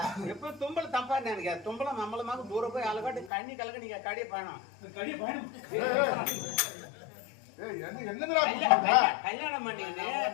எப்ப தும்பல் தப்பா நினைக்க தும்பலம் நம்மளமாக தூரம் போய் அழகாட்டு கண்ணி கலக்க நீங்க கடிய பயணம் கல்யாணம் பண்ணீங்கன்னு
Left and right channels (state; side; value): drops out; right; at 3.3 s